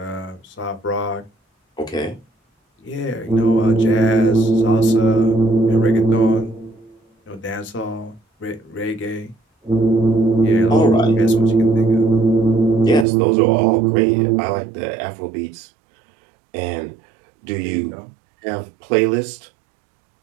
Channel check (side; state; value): left; drops out; at 13.1 s